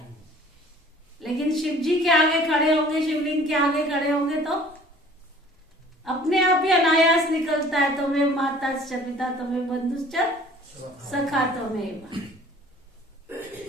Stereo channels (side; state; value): both; normal; correlation 0.50